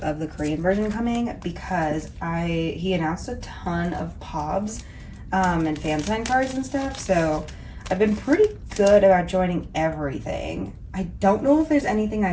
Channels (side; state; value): both; identical; correlation 1.00